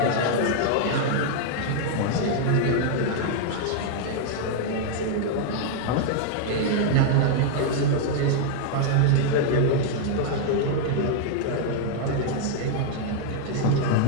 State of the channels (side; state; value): both; different; correlation -0.01